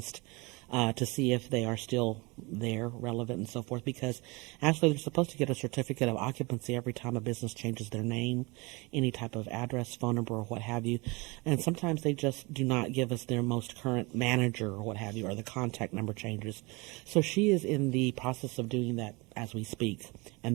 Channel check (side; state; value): left; quieter; 26.4 dB